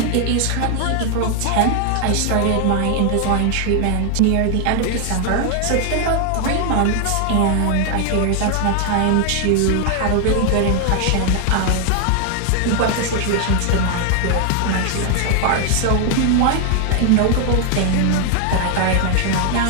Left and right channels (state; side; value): different; both; correlation 0.00